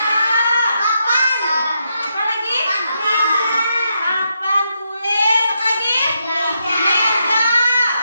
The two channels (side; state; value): both; inverted; correlation -0.81